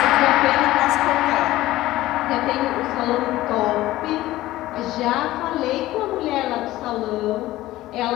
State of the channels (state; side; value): quieter; right; 16.3 dB